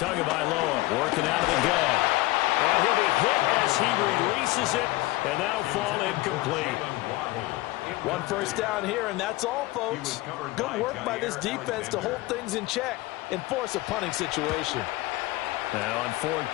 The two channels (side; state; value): right; quieter; 19.5 dB